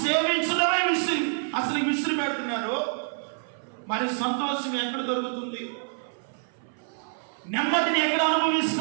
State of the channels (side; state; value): left; silent; 56 dB below the other